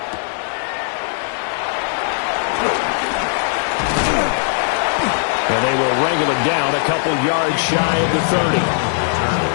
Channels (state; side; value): silent; right; digital silence